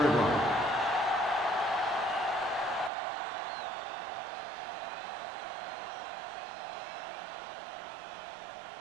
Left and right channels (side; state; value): left; drops out; at 2.9 s